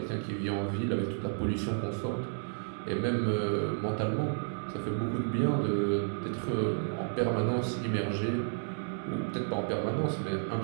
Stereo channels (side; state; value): left; silent; 55 dB below the other